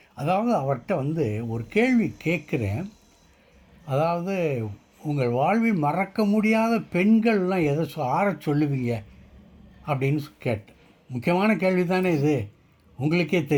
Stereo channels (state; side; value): identical; both; correlation 1.00